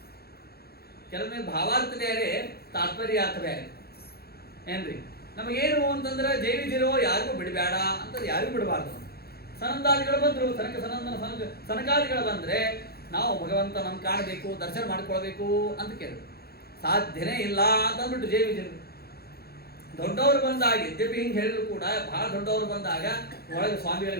ಕೆಲವೊಮ್ಮೆ ಭಾವಾರ್ಥ ಬೇರೆ, ತಾತ್ಪರ್ಯ ಅರ್ಥ ಬೇರೆ ಏನ್ರಿ. ನಮಗೇನು ಅಂತಂದ್ರೆ ಜೈವಿಜಿರೋ ಯಾರಿಗೂ ಬಿಡಬೇಡ ಅಂತಂದ್ರೆ ಯಾರಿಗೂ ಬಿಡಬಾರ್ದು. ಸನಂದಾದಿಗಳು ಬಂದ್ರು, ಸನಕಾದಿಗಳು ಬಂದ್ರೆ ನಾವು ಭಗವಂತನನ್ನು ಕಾಣಬೇಕು, ದರ್ಶನ ಮಾಡ್ಕೊಳ್ಬೇಕು ಅಂತ ಕೇಳಿದ್ರು. ಸಾಧ್ಯನೇ ಇಲ್ಲ ಅಂತ ಅಂದ್ಬಿಟ್ಟು ಜೈವಿಜರು. ದೊಡ್ಡವರು ಬಂದಾಗ ಯದ್ಯಪಿ ಹಿಂಗೆ ಹೇಳಿದ್ರು ಕೂಡ, ಬಹಳ ದೊಡ್ಡವರು ಬಂದಾಗ ಒಳಗೆ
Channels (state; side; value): late; right; 0.46 ms